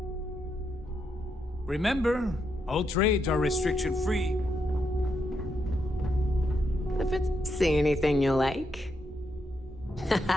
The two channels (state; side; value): normal; both; correlation 0.81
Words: Remember, all trades are restriction-free. If it's... See anything you like?